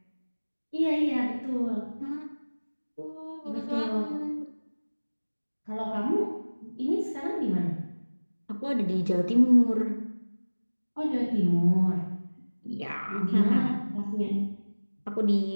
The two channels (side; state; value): both; inverted; correlation -1.00